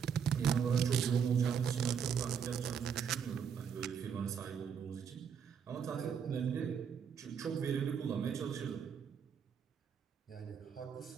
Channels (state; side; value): quieter; left; 7.3 dB